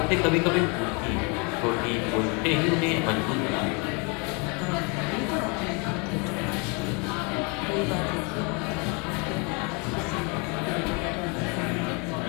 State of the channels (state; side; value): quieter; right; 32.4 dB